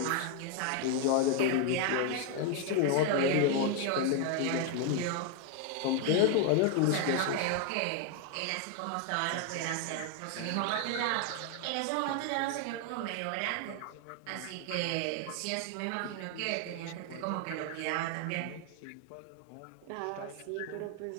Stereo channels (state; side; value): different; both; correlation 0.01